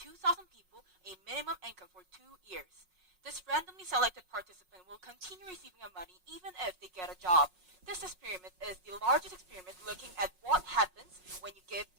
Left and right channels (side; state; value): left; late; 5.5 ms